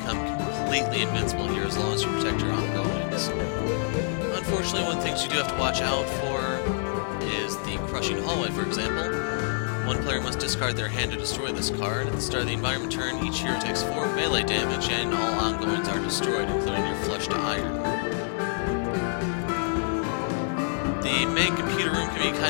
completely invincible here as long as you protect your ongoings. Unfortunately, one of the things you do have to watch out for is the Crushing Hallway, for example. One player must discard their hand to destroy this card. At the start of the environment turn, each hero takes 4 melee damage, and all ongoings are destroyed, including your Flesh to Iron. The main computer room can be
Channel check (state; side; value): silent; right; 60 dB below the other